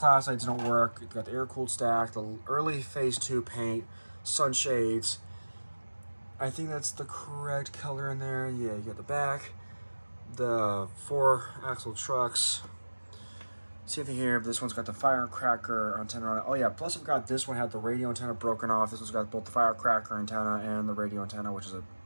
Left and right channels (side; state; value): both; inverted; correlation -1.00